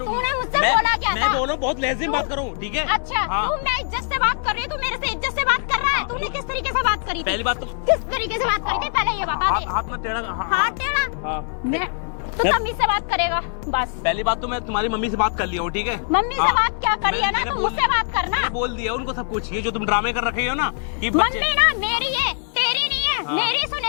मुझसे बोला क्या था? मैं बोल रहा हूँ, बहुत लहज़े में बात करूँ, ठीक है? अच्छा, तू मैं इज्जत से बात कर रही हूँ, तू मेरे से इज्जत से बात कर रहा है। तूने किस तरीके से बात करी थी? पहली बात तो किस तरीके से बात करी थी, पहले ये बता दे। हाथ में टेढ़ा। हाथ टेढ़ा? हाँ। मैं तो तमीज से बात करेगा बस। पहली बात तो मैं तुम्हारी मम्मी से बात कर लिया हूँ, ठीक है? मम्मी से हाँ। बात क्या करी है ना, मैंने तो बोल मुझसे बात करना। मैंने बोल दिया उनको सब कुछ। ये जो तुम ड्रामे कर रखे हो ना कि मम्मी ना मेरी है, तेरी नहीं है। हाँ। मेरी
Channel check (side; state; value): right; silent; 64 dB below the other